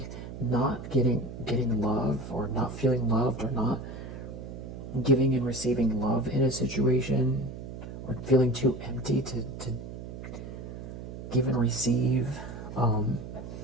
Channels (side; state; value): right; noise; hum, 10 dB below the sound